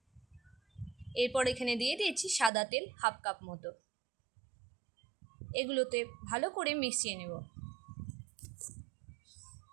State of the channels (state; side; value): drops out; left; at 2.5 s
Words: এরপর এখানে দিয়ে দিয়েছি সাদা তেল হাফ কাপ মতো। এগুলোতে ভালো করে মিশিয়ে নেব।